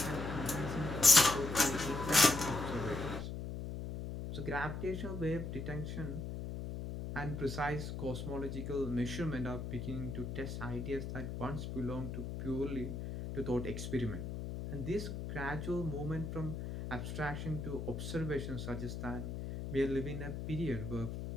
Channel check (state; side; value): noise; left; hum, 6 dB below the sound